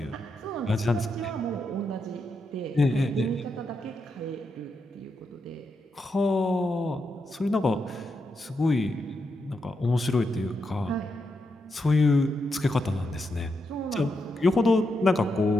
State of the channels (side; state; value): both; normal; correlation 0.84